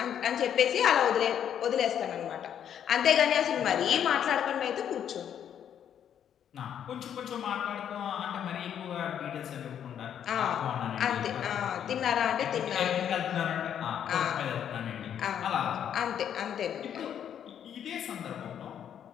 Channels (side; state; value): right; quieter; 9.3 dB